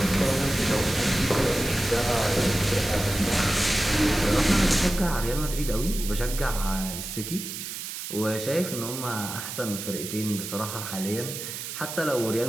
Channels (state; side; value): noise; right; hiss, 7 dB below the sound